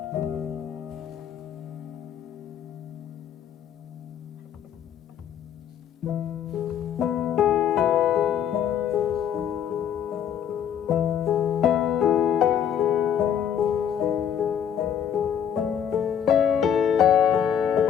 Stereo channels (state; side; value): quieter; right; 9.0 dB